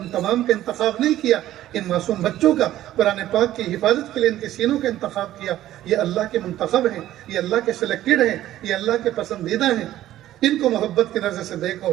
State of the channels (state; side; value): quieter; left; 13.6 dB